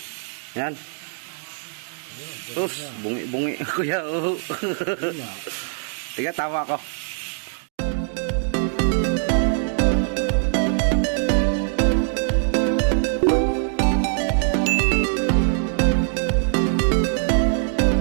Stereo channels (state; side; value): silent; left; digital silence